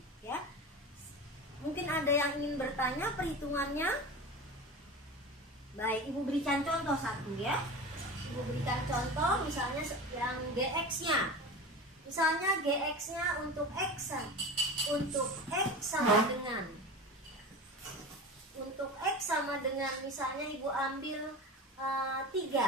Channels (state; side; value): normal; both; correlation 0.30